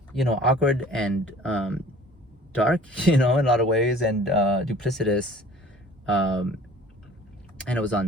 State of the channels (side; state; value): both; normal; correlation 0.48